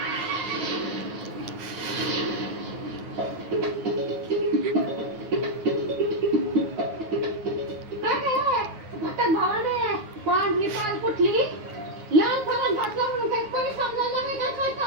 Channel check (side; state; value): left; late; 9.5 ms